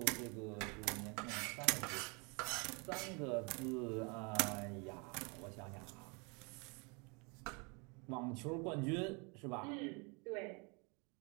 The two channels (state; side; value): quieter; left; 31.7 dB